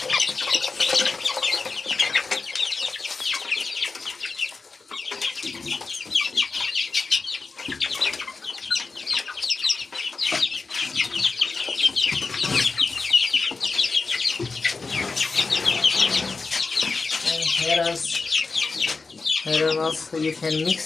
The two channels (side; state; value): right; quieter; 4.2 dB